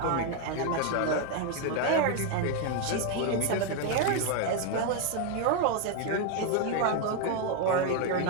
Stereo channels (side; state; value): both; different; correlation 0.01